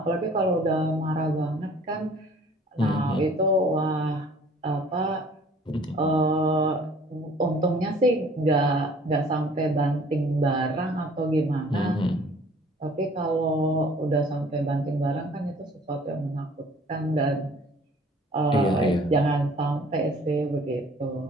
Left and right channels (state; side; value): normal; both; correlation 0.53